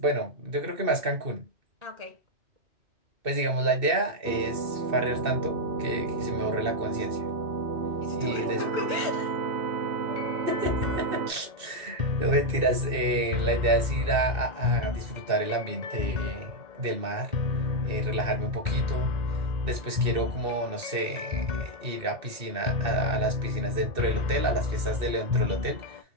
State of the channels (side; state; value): left; late; 2.6 ms